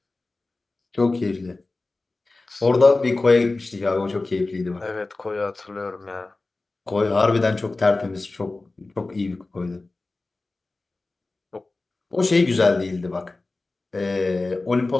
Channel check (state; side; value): quieter; right; 3.3 dB